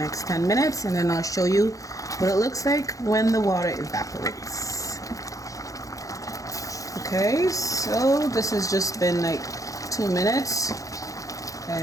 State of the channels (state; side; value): late; right; 0.16 ms